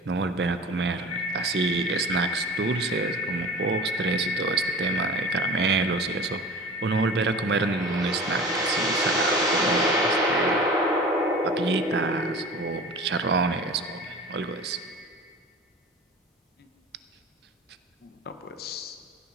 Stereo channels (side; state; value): both; normal; correlation 0.38